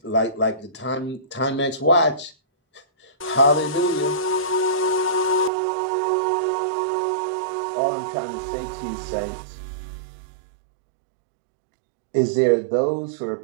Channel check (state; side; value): drops out; left; at 5.5 s